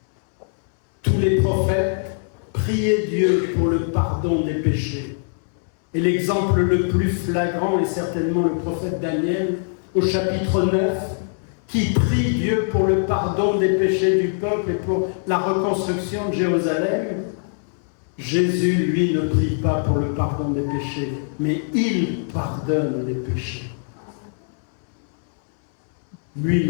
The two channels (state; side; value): silent; right; 62 dB below the other